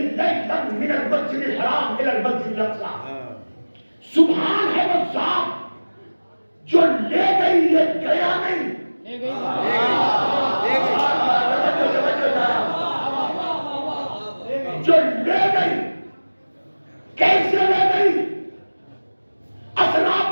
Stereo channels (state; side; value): inverted; both; correlation -1.00